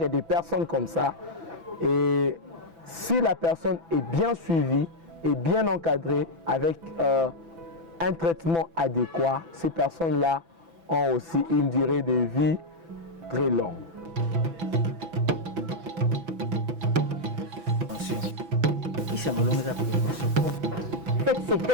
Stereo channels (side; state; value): left; late; 6.0 ms